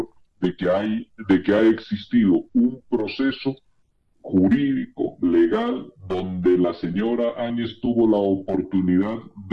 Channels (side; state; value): both; identical; correlation 1.00